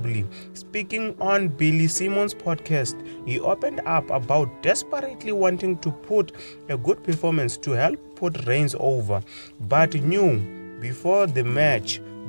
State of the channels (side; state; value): both; inverted; correlation -1.00